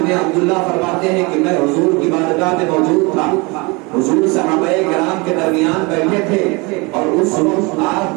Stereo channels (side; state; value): left; quieter; 27.3 dB